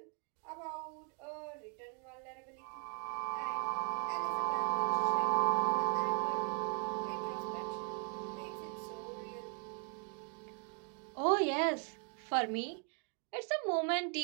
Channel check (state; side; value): quieter; left; 37.1 dB